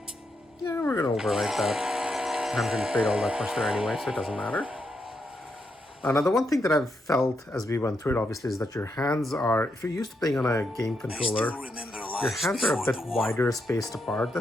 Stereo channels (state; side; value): normal; both; correlation 0.81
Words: Yeah, we're gonna overwrite that. I haven't really played all that much there anyway, so it doesn't matter. Now, the one thing that I've felt as we went through it, obviously, is that your hands are, if you're used to playing on a game controller, your hands are a bit wider spaced apart